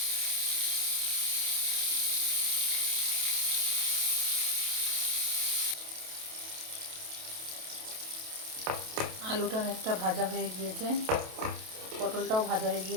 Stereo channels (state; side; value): late; left; 28 ms